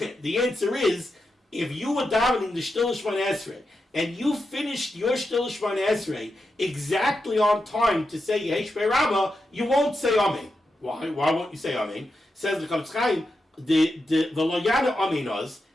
The answer is, if you were davening the Shtil Shmon Esrei, and you finished your Shtil Shmon Esrei exactly on time to say Yehei Shmei Rabbah, you won't say Amen. Why? Why won't you say Amen? Says the Chavetz Chaim, the Lo Yana Amen Oz.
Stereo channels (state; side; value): normal; both; correlation 0.88